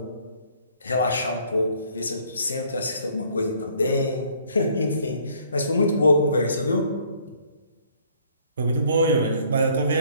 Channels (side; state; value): both; inverted; correlation -0.61